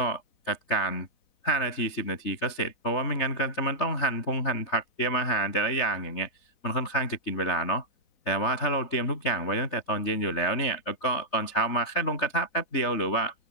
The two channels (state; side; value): late; right; 4.0 ms